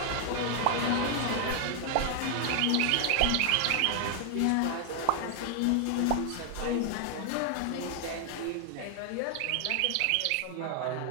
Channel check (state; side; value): different; both; correlation 0.00